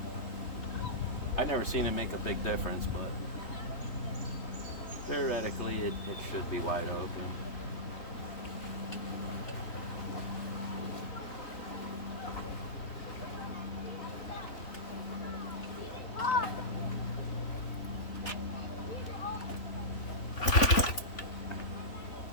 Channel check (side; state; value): right; late; 3.5 ms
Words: I've never seen it make a big difference, but theoretically it should be wide open.